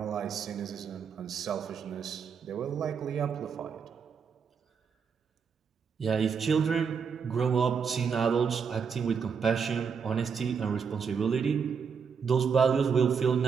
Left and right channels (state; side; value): quieter; left; 6.3 dB